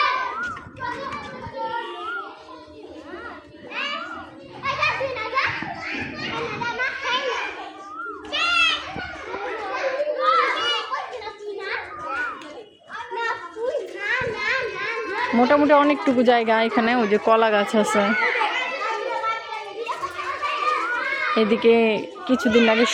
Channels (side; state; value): both; identical; correlation 1.00